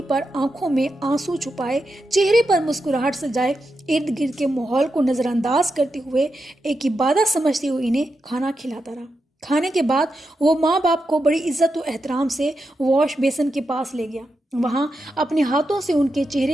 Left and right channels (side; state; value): both; normal; correlation 0.87